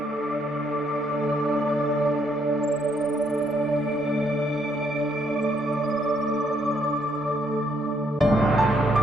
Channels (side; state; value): both; normal; correlation 0.72